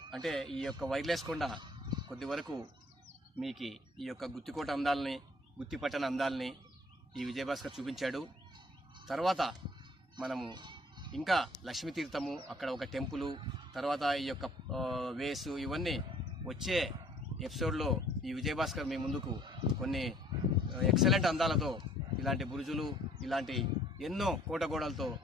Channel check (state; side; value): normal; both; correlation 0.58